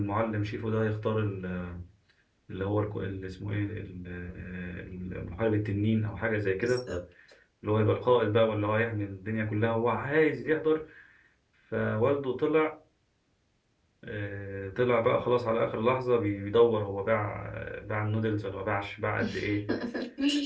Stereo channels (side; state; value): both; identical; correlation 1.00